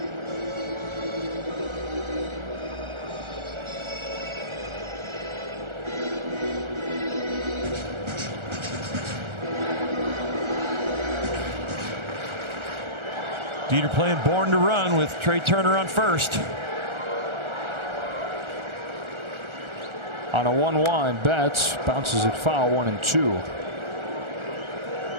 Dieter playing Born to Run with Trey Turner on first. On a 1-1, Betts bounces it foul, 1-2.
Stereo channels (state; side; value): late; left; 1.4 ms